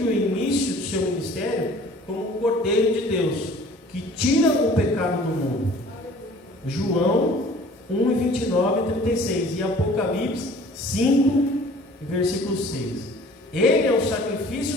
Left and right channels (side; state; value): both; normal; correlation 0.49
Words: o início do seu ministério como o Cordeiro de Deus, que tira o pecado do mundo. João 1:29-36 e Apocalipse 5, versículo 6. Ele é o